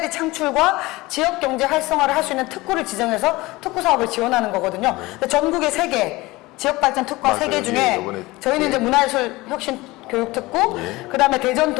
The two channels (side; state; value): right; quieter; 20.8 dB